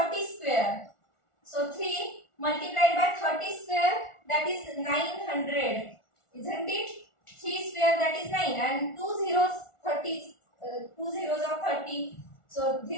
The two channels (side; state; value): right; late; 1.4 ms